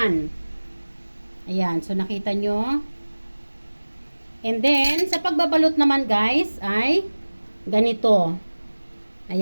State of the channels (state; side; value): inverted; both; correlation -1.00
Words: Ayan. So, nakita nyo. And then, sa pagbabalot naman guys, ay ganito.